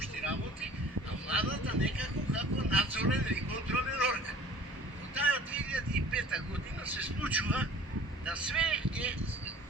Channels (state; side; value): normal; both; correlation 0.47